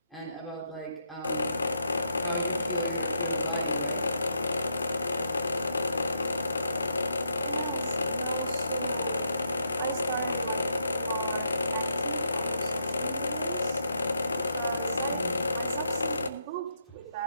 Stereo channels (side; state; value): both; inverted; correlation -0.79